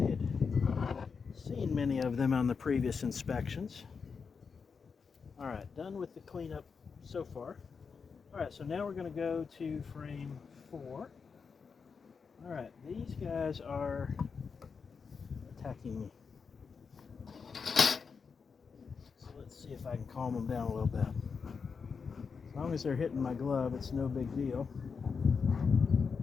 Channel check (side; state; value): right; quieter; 5.5 dB